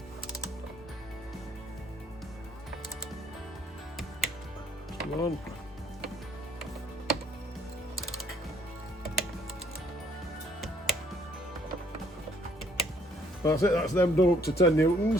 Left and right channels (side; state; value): both; normal; correlation 0.63